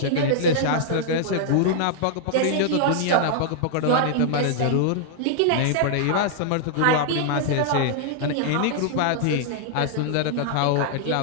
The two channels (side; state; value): both; different; correlation -0.01